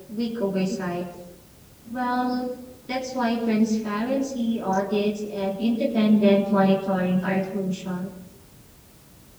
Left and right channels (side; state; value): both; identical; correlation 1.00